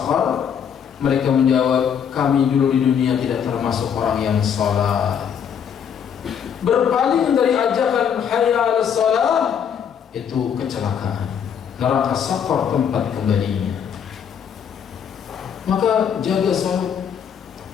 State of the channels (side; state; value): right; quieter; 7.9 dB